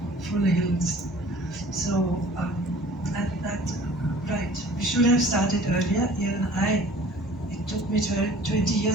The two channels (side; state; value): both; normal; correlation 0.48